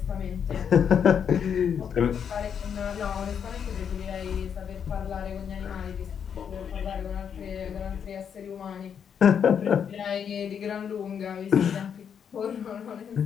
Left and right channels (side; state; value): right; quieter; 7.7 dB